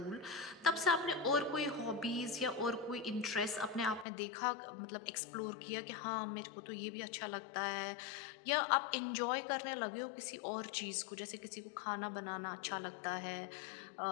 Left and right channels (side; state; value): right; drops out; at 4.0 s